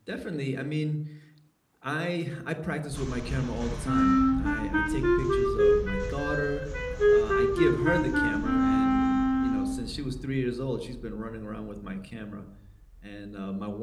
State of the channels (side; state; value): both; identical; correlation 1.00